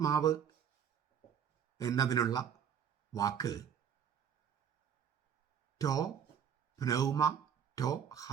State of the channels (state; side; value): quieter; left; 8.2 dB